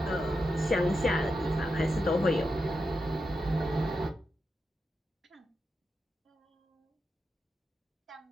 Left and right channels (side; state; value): both; normal; correlation 0.87